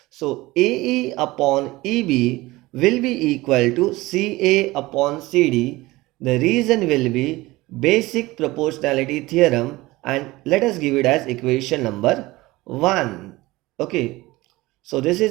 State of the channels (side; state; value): left; quieter; 19.9 dB